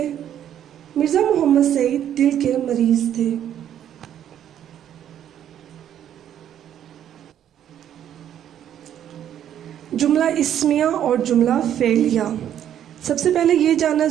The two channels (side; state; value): left; quieter; 10.3 dB